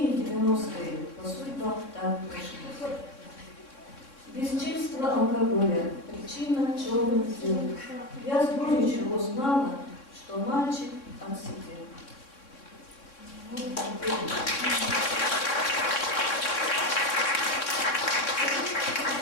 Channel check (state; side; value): late; right; 3.6 ms